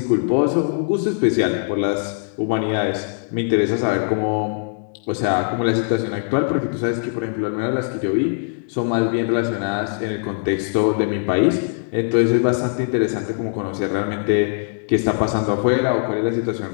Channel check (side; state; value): right; silent; digital silence